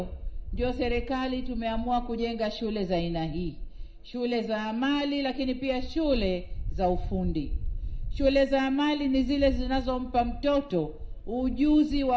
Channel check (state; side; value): identical; both; correlation 1.00